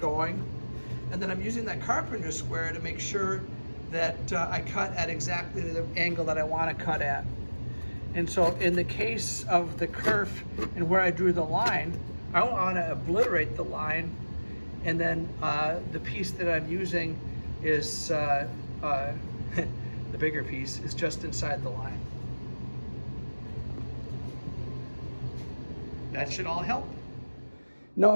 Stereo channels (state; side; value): inverted; both; correlation -1.00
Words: And then I'm using that carpenter's square to make sure that I cut at exactly the angle that I want to cut at. And so in the case of the kerf and where I drew the line, I don't want to obliterate the line. And then the piece that I'm using is the bigger piece is just inside the line. That should all help. Now,